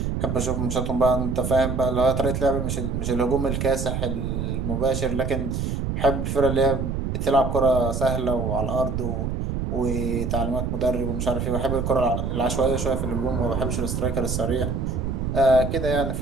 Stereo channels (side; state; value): right; noise; rumble, 2 dB below the sound